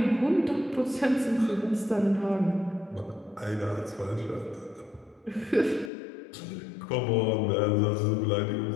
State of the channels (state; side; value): drops out; right; at 5.9 s